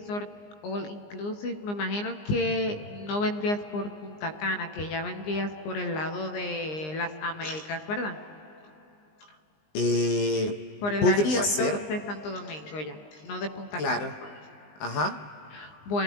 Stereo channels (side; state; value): right; late; 20 ms